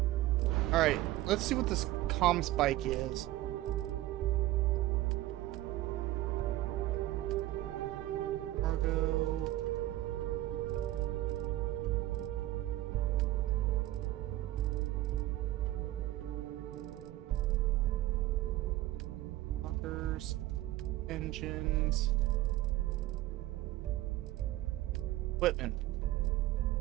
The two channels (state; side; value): quieter; left; 15.8 dB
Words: all right. Let's see what this ComSpike is. Cargo. Engines, equipment.